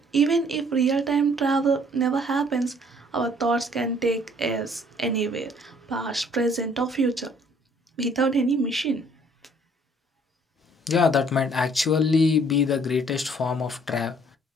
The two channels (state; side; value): normal; both; correlation 0.60